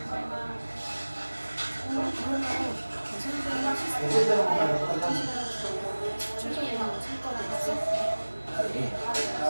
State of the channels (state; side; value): inverted; both; correlation -1.00